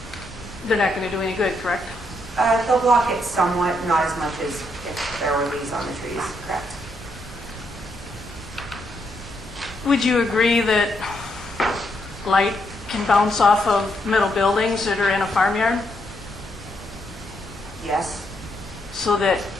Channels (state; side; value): normal; both; correlation 0.77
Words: they're not going to do any good, correct? They'll block it somewhat, not as much as if there were leaves on the trees, correct? Would you agree that light can bounce off of metal buildings that are in a farmyard? Yes. So that